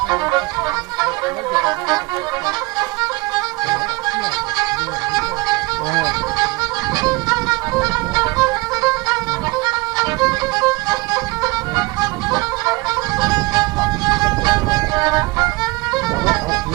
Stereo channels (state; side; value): quieter; left; 23.7 dB